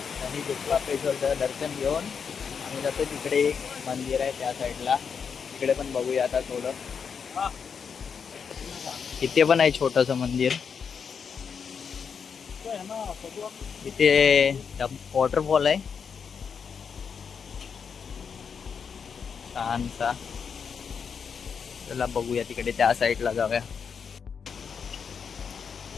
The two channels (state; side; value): quieter; right; 6.4 dB